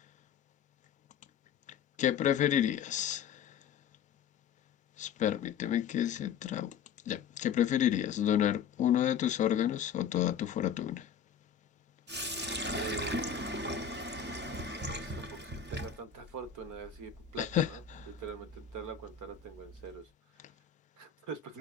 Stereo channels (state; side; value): quieter; right; 7.9 dB